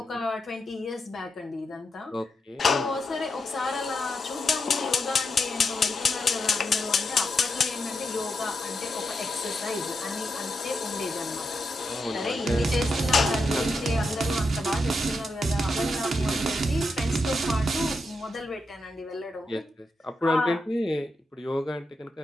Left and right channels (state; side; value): normal; both; correlation 0.85